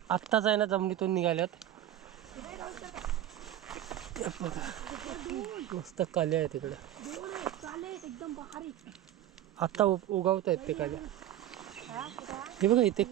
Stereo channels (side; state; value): left; quieter; 12.4 dB